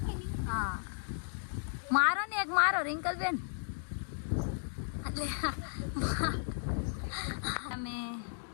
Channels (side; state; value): right; silent; digital silence